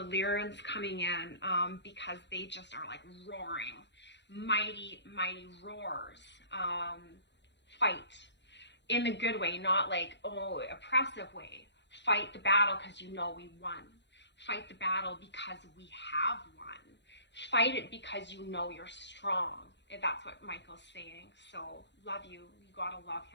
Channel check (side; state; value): right; late; 0.52 ms